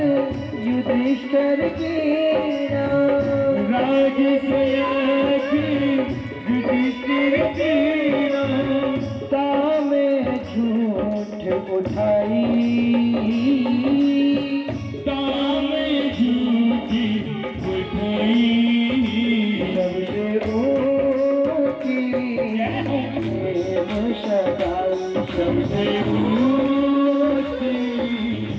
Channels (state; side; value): identical; both; correlation 1.00